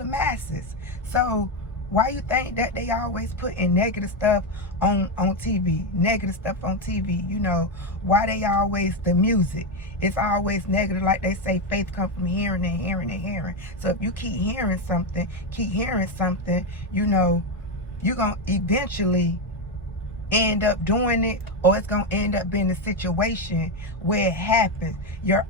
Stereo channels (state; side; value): normal; both; correlation 0.09